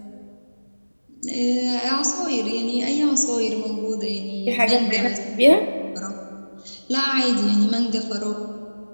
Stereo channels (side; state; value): both; inverted; correlation -1.00